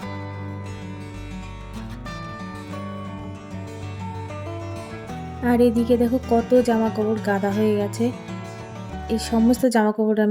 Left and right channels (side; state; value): both; identical; correlation 1.00